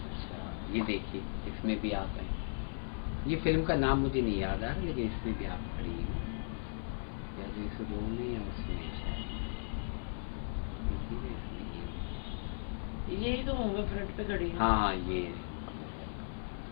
अच्छा, ये देखिए इसमें भी आप हैं। ये फिल्म का नाम मुझे नहीं याद आ रहा, लेकिन इसमें भी आप खड़ी हैं। या जो इस रोल में या उसमें शायद। यही तो हूँ मैं, फ्रंट पे खड़ी हूँ। हाँ, ये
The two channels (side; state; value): right; silent; 53 dB below the other